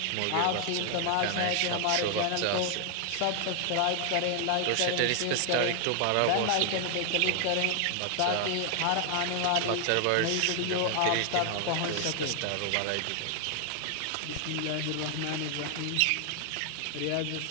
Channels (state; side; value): different; both; correlation 0.00